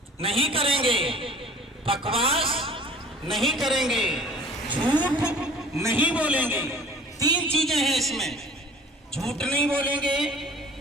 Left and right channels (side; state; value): both; normal; correlation 0.47